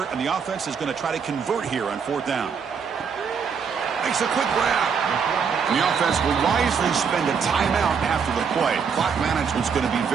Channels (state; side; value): quieter; left; 6.3 dB